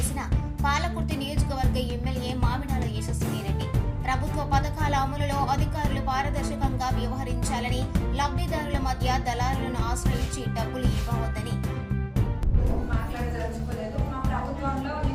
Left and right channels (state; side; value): identical; both; correlation 1.00